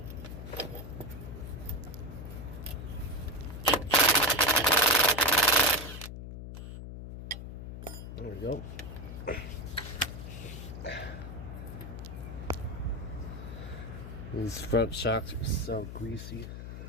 There we go. These front shocks are so greasy.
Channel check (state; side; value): noise; left; hum, 9 dB below the sound